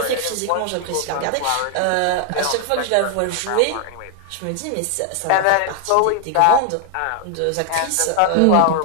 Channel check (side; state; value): both; different; correlation 0.00